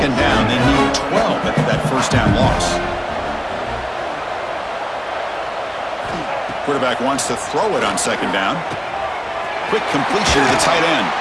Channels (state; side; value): identical; both; correlation 1.00